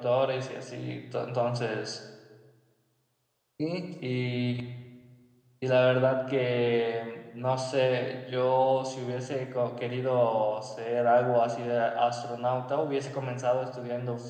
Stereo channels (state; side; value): identical; both; correlation 1.00